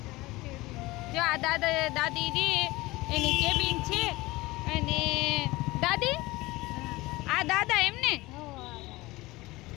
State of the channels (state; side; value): quieter; right; 20.4 dB